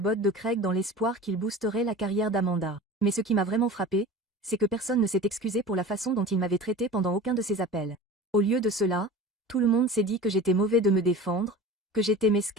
de Craig dans l'espoir qu'il boosterait la carrière d'Amanda. Mais ce qui m'a vraiment frappé, c'est que personne ne s'est excusé pour la façon dont il m'avait traité pendant aucun de ses appels. Au lieu de cela, tout le monde s'est dit que j'étais mauvais de me défendre, que j'étais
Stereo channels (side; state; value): both; normal; correlation 0.36